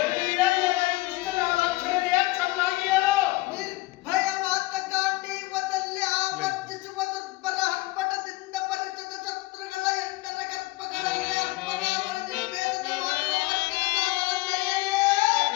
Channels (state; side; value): quieter; right; 20.8 dB